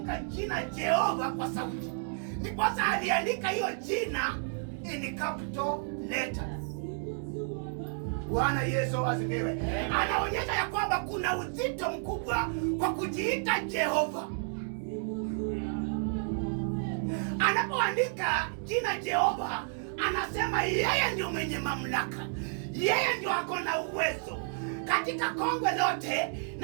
jina Jehova kwa sauti, ndiposa aliandika hiyo jina in capital letters. Bwana Yesu asifiwe. Anaonyesha ya kwamba kuna uzito mkubwa kwa kujiita Jehova. Anapoandika jina Jehova, anasema yeye ndio mwenye mamlaka, yeye ndio ako na uwezo katika kongwe lote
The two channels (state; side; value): silent; left; 57 dB below the other